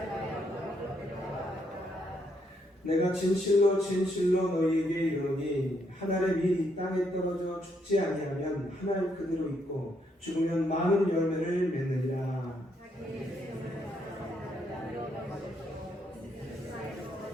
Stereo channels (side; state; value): both; normal; correlation 0.75